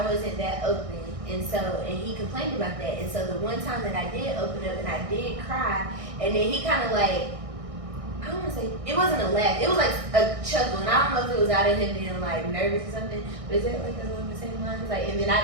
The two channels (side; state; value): left; late; 1.6 ms